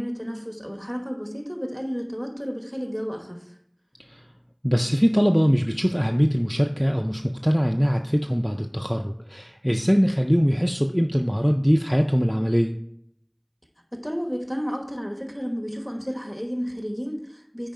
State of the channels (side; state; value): both; identical; correlation 1.00